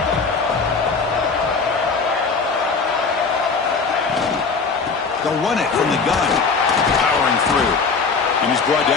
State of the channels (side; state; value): right; quieter; 4.8 dB